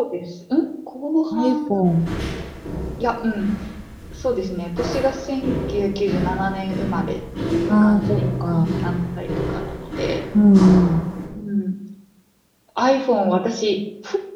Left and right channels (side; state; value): both; identical; correlation 1.00